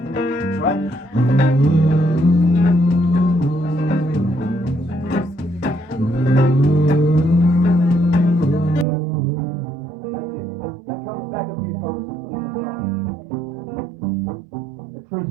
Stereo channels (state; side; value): drops out; left; at 8.8 s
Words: right? That's it. That comes back a few times in the song. A true